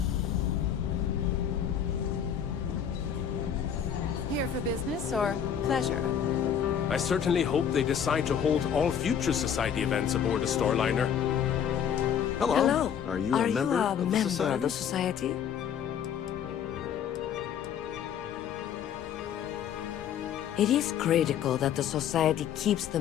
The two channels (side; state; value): right; quieter; 8.4 dB